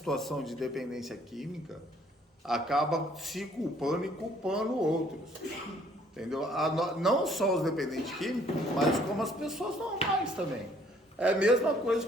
de dependência química acaba se culpando e culpando outros. Entendeu? Não só os dependentes químicos, mas como as pessoas normais também. É a mesma coisa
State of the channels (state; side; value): normal; both; correlation 0.61